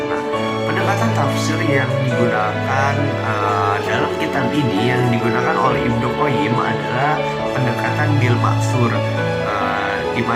pendekatan tafsir yang digunakan dalam kitab ini yang digunakan oleh Ibnu Qayyim adalah pendekatan bil ma'thur, di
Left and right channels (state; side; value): identical; both; correlation 1.00